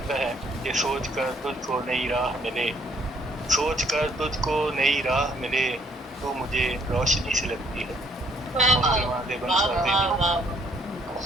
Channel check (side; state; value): both; normal; correlation 0.65